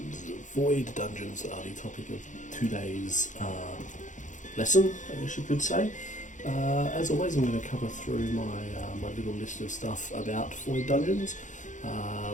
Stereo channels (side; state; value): right; late; 0.36 ms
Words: Void Dungeons are the topic of today's lesson, I guess you could say. As always, I'm going to cover through my little list of stuff about Void Dungeons.